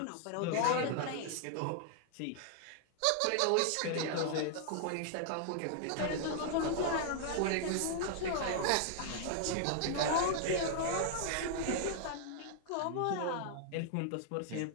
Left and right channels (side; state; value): both; different; correlation 0.00